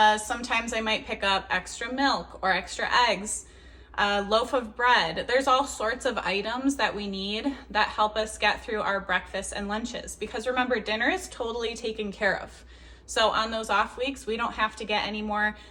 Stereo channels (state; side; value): identical; both; correlation 1.00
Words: Sometimes I might pick up extra milk or extra eggs, a loaf of bread. There's all sorts of items that we need that help us get through our breakfasts and lunches. Because remember, dinner is totally taken care of. So on those off weeks, we don't have to get any more